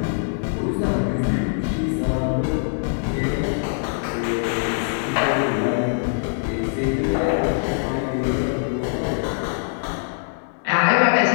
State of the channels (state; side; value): silent; right; digital silence